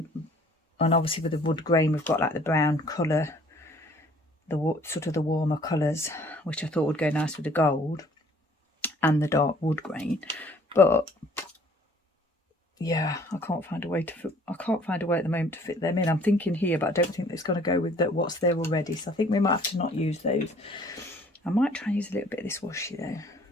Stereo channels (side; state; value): both; normal; correlation 0.56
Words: obviously with the wood grain, we've got like the brown colour, the sort of the warmer colours, which I thought would go nice with the gold and the dark wood grain. But yeah, I can't find a way at the moment to fit them in. I'm thinking here, but I don't think it's going to go with what's there already. So I think we might have to not use those. I might try and use a little bit of this washi though.